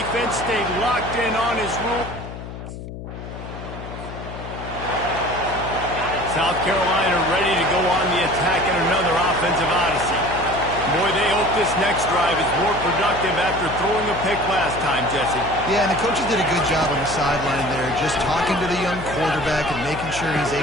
stayed locked in on his rule. South Carolina ready to go on the attack in another offensive odyssey. Boy, they hope this next drive is more productive after throwing a pick last time, Jesse. Yeah, and the coaches did a good job on the sideline there, just talking to the young quarterback and making sure he's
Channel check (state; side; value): noise; left; hum, 10 dB below the sound